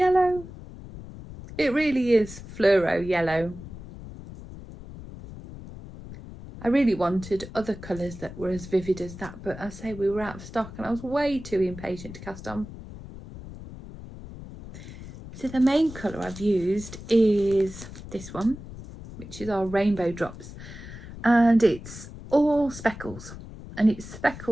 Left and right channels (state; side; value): noise; left; rumble, 14 dB below the sound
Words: It really is fluoro yellow. I really wanted other colours that were as vivid as that, but I say we were out of stock, and I was way too impatient to cast on. So the main colour I've used is this one, which is our Rainbow Drops, and it's all speckles, and it's